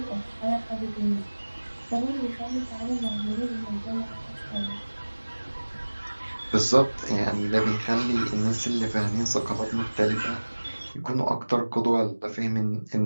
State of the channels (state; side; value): inverted; both; correlation -1.00